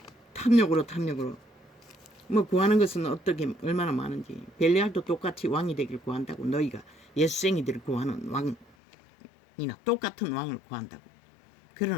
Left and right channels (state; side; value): drops out; right; at 8.7 s